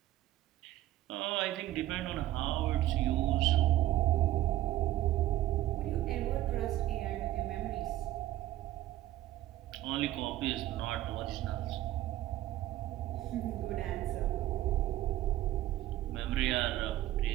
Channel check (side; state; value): left; quieter; 14.4 dB